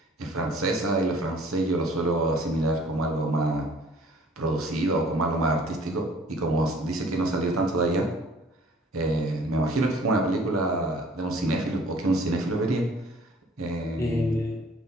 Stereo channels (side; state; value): both; normal; correlation 0.54